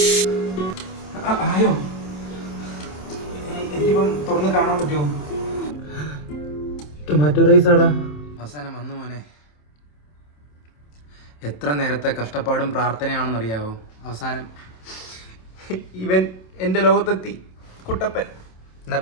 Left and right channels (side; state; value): right; late; 27 ms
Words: ആയോ? എനിക്കിപ്പം തുറന്ന് കാണാൻ പറ്റുമോ? ടൊമാറ്റോ റൈസ് ആടാ. അവസാനം വന്നു മോനെ. എത്ര നേരത്തെ കഷ്ടപ്പാടും പ്രാർത്ഥനയാണെന്നറിയാവോ? അവസാനം ഇവൻ എൻ്റെ ലോകത്തെത്തി, കുട്ടപ്പൻ. എന്നാ